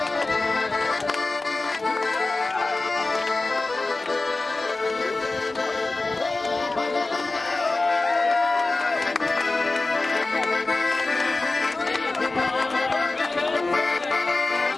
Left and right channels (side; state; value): right; quieter; 3.3 dB